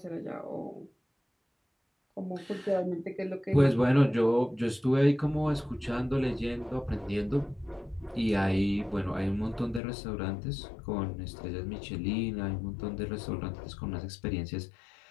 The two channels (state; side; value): drops out; right; at 9.8 s